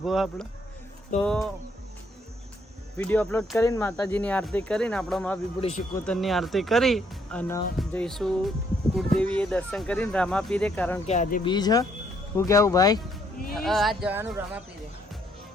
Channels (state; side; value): normal; both; correlation 0.69